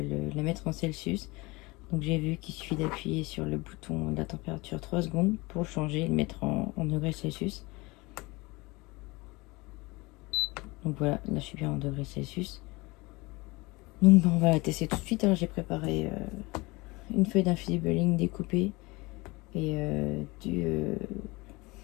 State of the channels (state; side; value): quieter; right; 23.7 dB